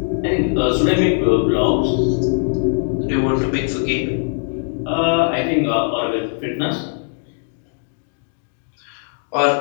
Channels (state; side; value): silent; right; digital silence